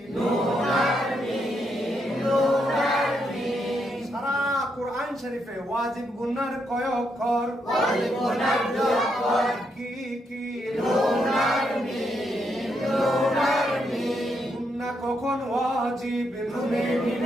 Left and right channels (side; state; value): both; normal; correlation 0.79